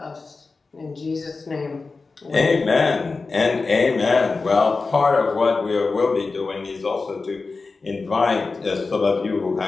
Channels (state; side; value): quieter; right; 4.0 dB